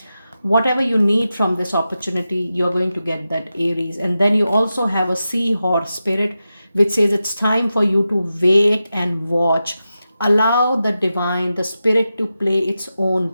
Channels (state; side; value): inverted; both; correlation -0.91